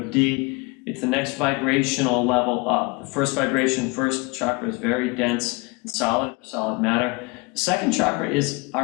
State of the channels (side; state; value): right; quieter; 27.3 dB